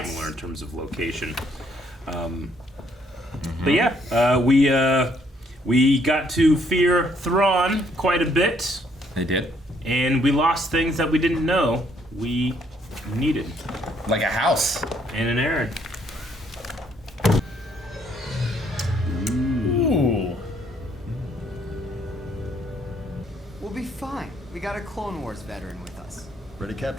in terms of location. But yeah, we got to fear Thrawn quite a bit. They did. And we lost things that we didn't know we needed. Like a house. And an Aaron. Ooh. We'll be fine. We got a Clone Wars veteran with us. Ready,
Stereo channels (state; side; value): normal; both; correlation 0.68